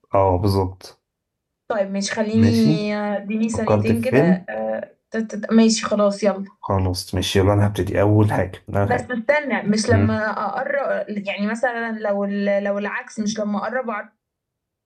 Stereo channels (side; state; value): both; identical; correlation 1.00